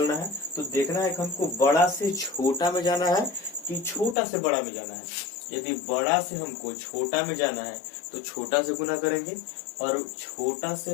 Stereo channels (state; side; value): drops out; right; at 4.2 s